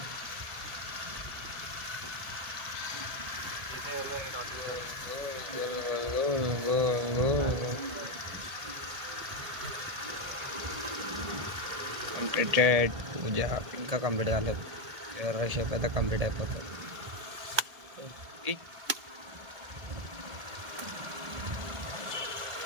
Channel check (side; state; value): left; late; 1.7 ms